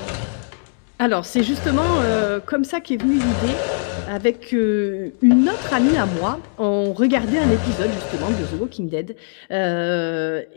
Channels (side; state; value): right; silent; digital silence